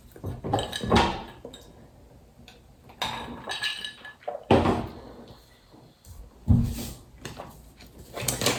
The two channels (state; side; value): identical; both; correlation 1.00